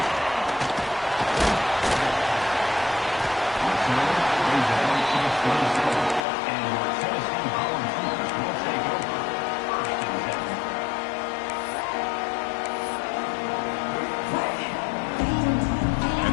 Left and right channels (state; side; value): drops out; right; at 6.2 s